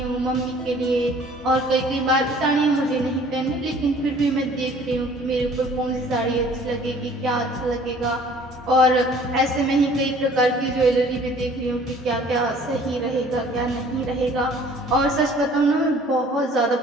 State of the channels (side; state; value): both; normal; correlation 0.53